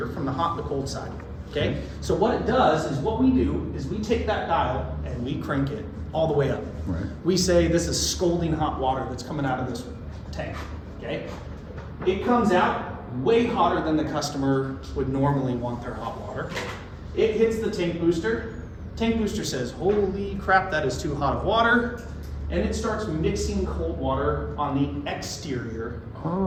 from the hot and the cold side. Okay? So what it does is what we do is we take that dial and we crank it all the way up. Right. We say this is scalding hot water that's coming out of this tank. Okay? It comes out way hotter than the customer would normally want their hot water. It hits the tank booster. Tank booster says, holy crap, that is too hot of water. And it starts mixing cold water on the exterior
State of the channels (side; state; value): both; identical; correlation 1.00